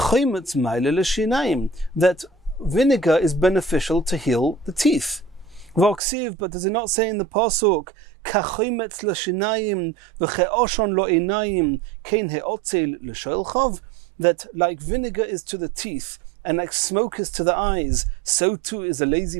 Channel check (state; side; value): drops out; left; at 6.0 s